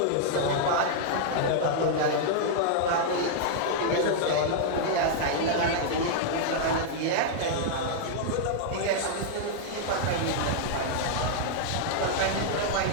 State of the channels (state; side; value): different; both; correlation -0.01